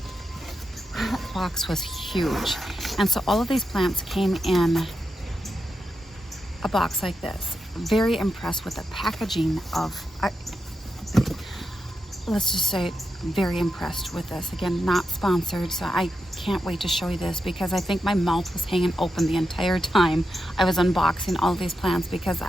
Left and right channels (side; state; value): both; normal; correlation 0.87